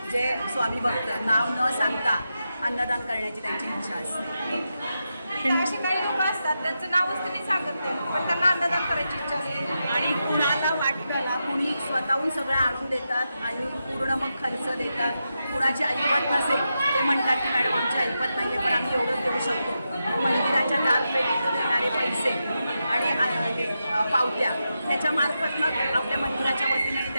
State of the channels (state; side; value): inverted; both; correlation -0.88